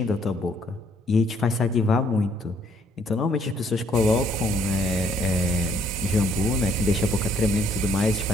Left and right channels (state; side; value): normal; both; correlation 0.66